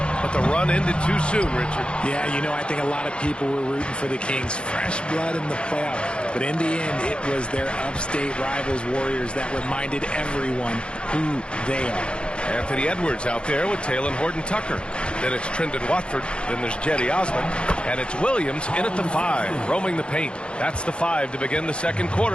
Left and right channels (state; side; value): late; right; 0.055 ms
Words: But the run ended too soon, Richard. Yeah, you know, I think a lot of people were rooting for the Kings. Fresh blood in the playoffs. But in the end, it was their upstate rivals, Warriors, that reminded everyone who they are. Anthony Edwards out there with Taylor Horton-Tucker. Then it's Trendon Watford. Then there's Jetty Osman. And it's Williams in at the 5, roaming the paint. That's the 5 to begin the second